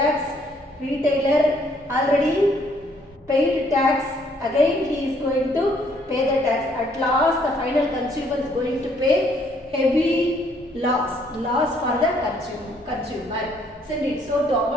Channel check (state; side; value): normal; both; correlation 0.66